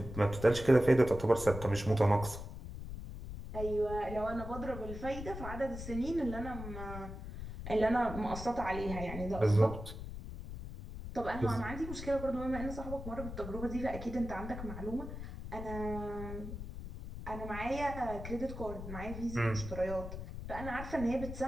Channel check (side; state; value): left; noise; rumble, 9 dB below the sound